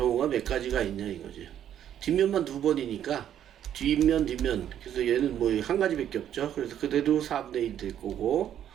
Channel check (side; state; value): left; quieter; 10.3 dB